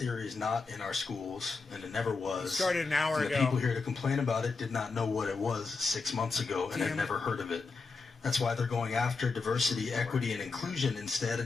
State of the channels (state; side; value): quieter; right; 4.3 dB